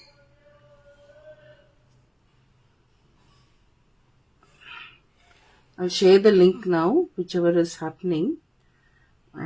I'll share the link now, whichever is happening.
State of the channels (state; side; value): identical; both; correlation 1.00